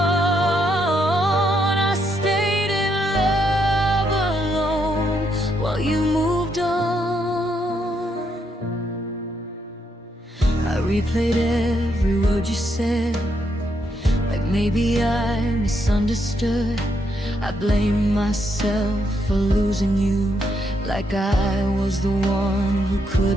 You moved on. I replayed every word you said, like maybe I misunderstood. I blamed myself for losing you, like I was the one who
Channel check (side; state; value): both; normal; correlation 0.77